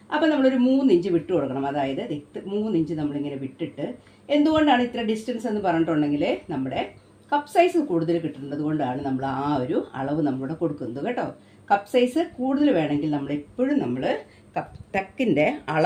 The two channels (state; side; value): identical; both; correlation 1.00